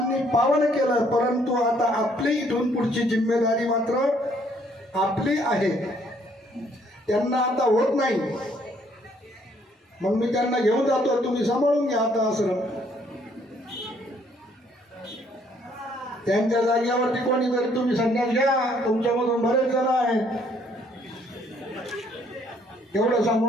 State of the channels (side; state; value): both; normal; correlation 0.65